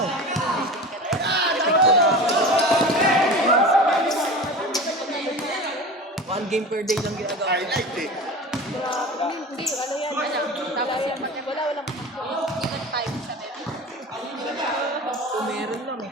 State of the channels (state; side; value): normal; both; correlation 0.33